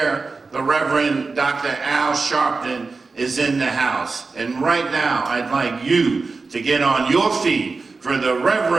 The Reverend Dr. Al Sharpton is in the house. And right now, I'd like you to get on your feet for the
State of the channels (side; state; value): left; quieter; 4.1 dB